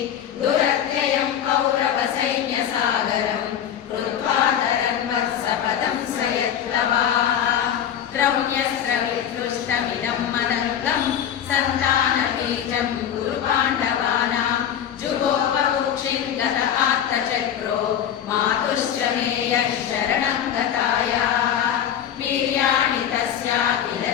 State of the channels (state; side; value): quieter; right; 9.5 dB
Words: दुरत्ययं कौरवसैन्यसागरं कृत्वा धरन्वर्षपदं स यत्तवाः द्रव्यस्रवितृष्टमिदम् अनन्तं सन्तानबीजं गुरुपाण्डवानां जुगोपवुक्षिं गत आत्तचक्रो मातुश्च मे यः शरणं गतायाः वीर्याणि तस्या किल